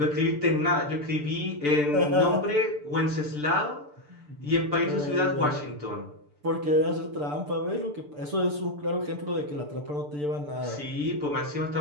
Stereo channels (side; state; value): left; late; 6.8 ms